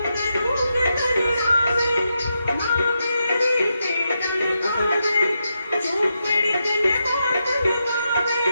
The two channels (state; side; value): inverted; both; correlation -0.85